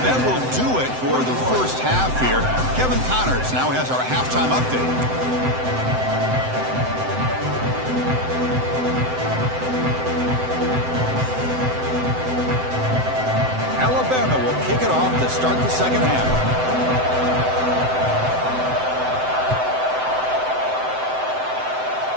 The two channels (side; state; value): left; late; 7.8 ms